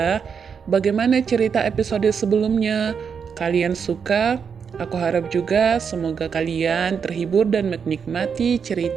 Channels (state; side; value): quieter; left; 6.6 dB